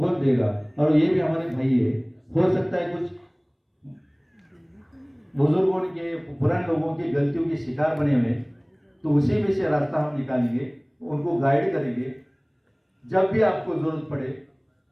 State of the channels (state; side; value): identical; both; correlation 1.00